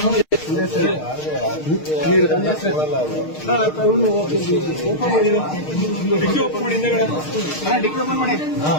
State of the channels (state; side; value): late; right; 6.5 ms